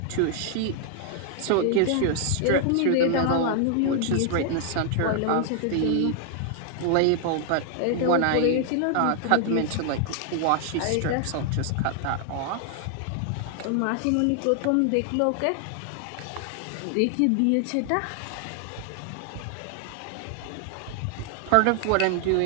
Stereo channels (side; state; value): both; different; correlation 0.00